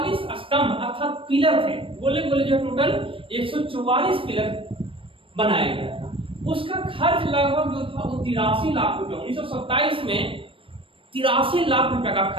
स्तंभ अर्थात पिलर थे, गोले गोले जो टोटल 144 पिलर बनाया गया था। उसका खर्च लगभग जो था वो 83 लाख रुपए, 1927 में 83 लाख रुपए का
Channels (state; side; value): late; left; 0.25 ms